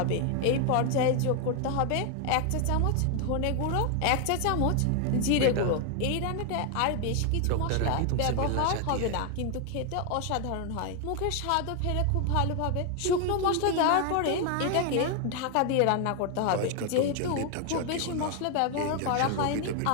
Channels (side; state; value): both; different; correlation 0.01